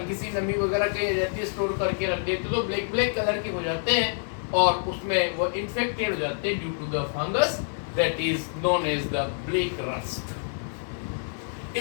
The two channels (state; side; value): silent; right; 60 dB below the other